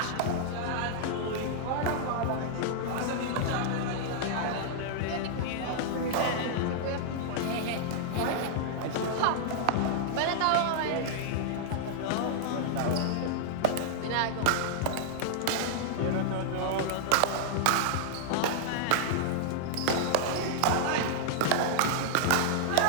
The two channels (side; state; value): both; different; correlation -0.01